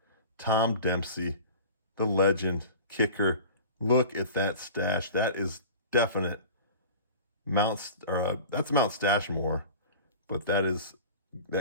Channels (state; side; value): inverted; both; correlation -0.38